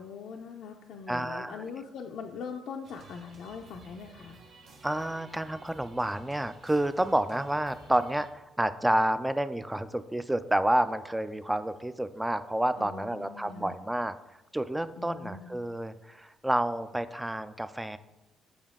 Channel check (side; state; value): both; normal; correlation 0.97